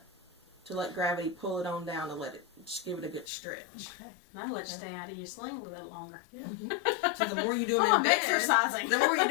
let gravity pull it on down to let it just give it a good stretch. Okay. That'll let you stay out of your sling a little bit longer. So the more you do them Oh, in I'm bed, exercising. the more you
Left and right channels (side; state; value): right; drops out; at 3.2 s